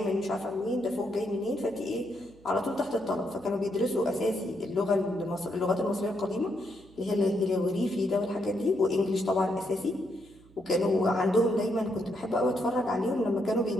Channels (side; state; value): right; noise; hum, 26 dB below the sound